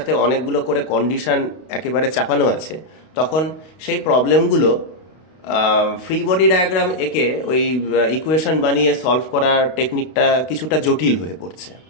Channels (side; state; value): right; late; 32 ms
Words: অনেকগুলো করে কন্ডিশন একেবারে চাপানো আছে, তখন সেই প্রবলেমগুলো ফ্রি বডি ডায়াগ্রাম এঁকে ওই ইকুয়েশন বানিয়ে সলভ করার টেকনিকটা কিছুটা জটিল হয়ে পড়ছে।